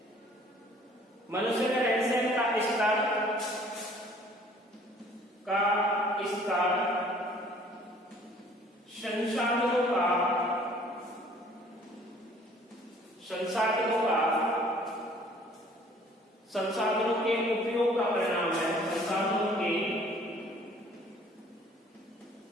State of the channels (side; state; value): both; normal; correlation 0.55